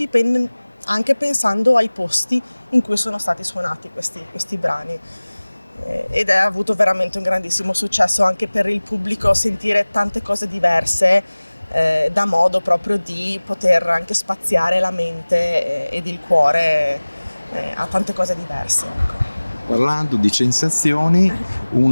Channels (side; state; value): both; inverted; correlation -1.00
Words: anche pensando ai posti in cui sono stati suonati questi brani. Ed ha avuto veramente un grandissimo successo anche per il pubblico sentire tante cose diverse, da modo proprio di poter anche spaziare la mente ed il cuore a tante cose diverse. Ecco. Parlando di sensazioni,